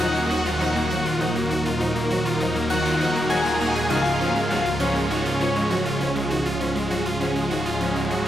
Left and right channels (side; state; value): both; normal; correlation 0.84